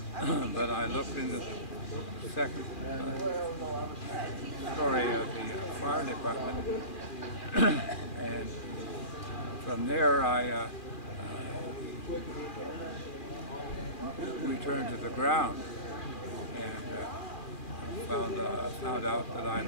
but I looked into the second story of the fire department, and from there I returned to the ground, and found out that I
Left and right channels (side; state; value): right; late; 2.4 ms